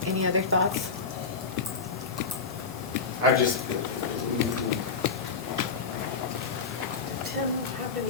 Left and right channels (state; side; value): quieter; right; 5.0 dB